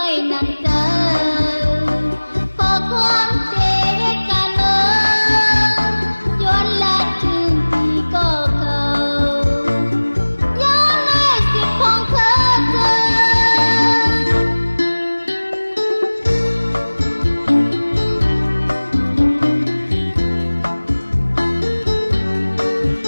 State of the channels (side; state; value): both; inverted; correlation -1.00